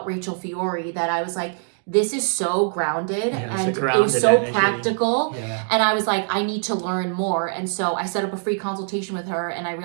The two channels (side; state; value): left; silent; digital silence